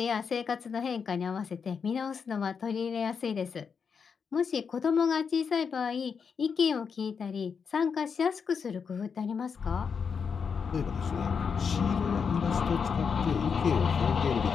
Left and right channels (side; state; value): right; quieter; 6.1 dB